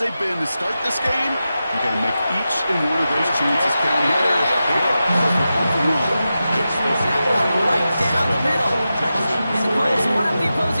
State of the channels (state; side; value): inverted; both; correlation -0.92